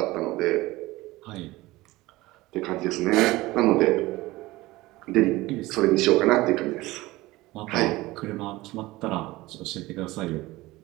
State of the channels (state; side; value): quieter; left; 19.3 dB